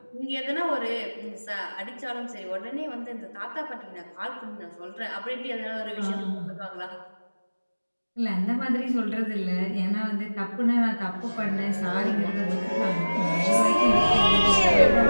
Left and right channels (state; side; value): inverted; both; correlation -1.00